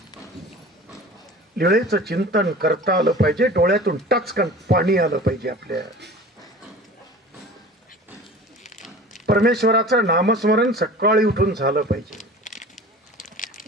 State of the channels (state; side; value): normal; both; correlation 0.40